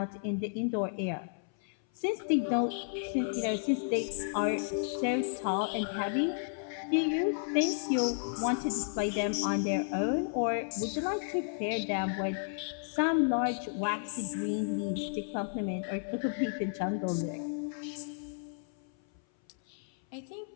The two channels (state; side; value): silent; right; 56 dB below the other